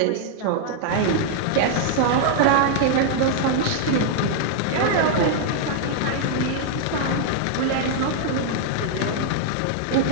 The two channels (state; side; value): different; both; correlation -0.01